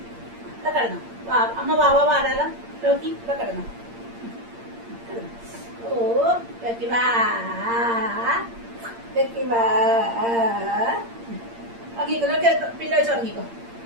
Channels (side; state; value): left; late; 8.7 ms